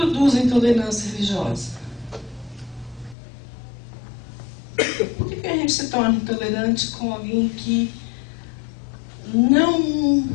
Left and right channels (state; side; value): drops out; right; at 3.2 s